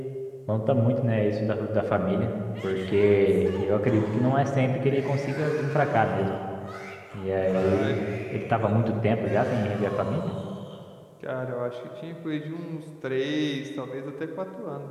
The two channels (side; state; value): both; identical; correlation 1.00